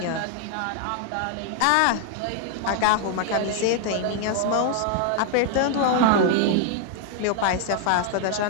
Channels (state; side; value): different; both; correlation 0.00